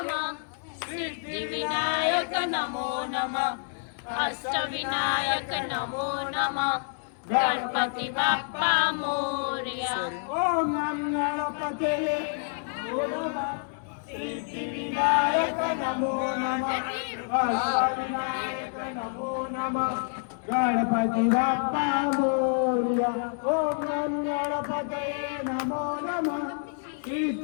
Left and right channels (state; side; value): silent; right; 59 dB below the other